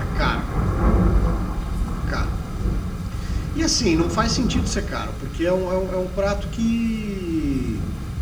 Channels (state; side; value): identical; both; correlation 1.00